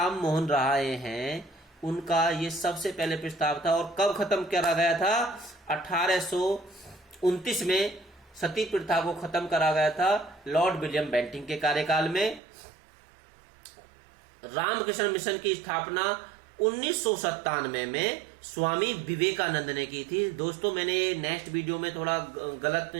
मोहन राय हैं उनका ये सबसे पहले प्रस्ताव था। और कब खत्म करा गया था? 1829 में सती प्रथा को खत्म करा गया था लॉर्ड विलियम बेंटिंग के कार्यकाल में। रामकृष्ण मिशन की स्थापना 1997 में स्वामी विवेकानंद ने की थी। दोस्तों मैंने नेक्स्ट वीडियो में थोड़ा गलत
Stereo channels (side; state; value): left; drops out; at 12.4 s